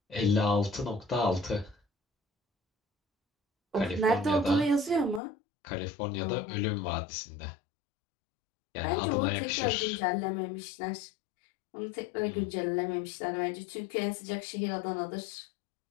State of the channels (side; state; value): right; drops out; at 5.2 s